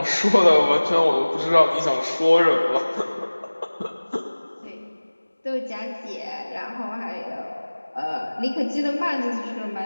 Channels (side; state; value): both; inverted; correlation -1.00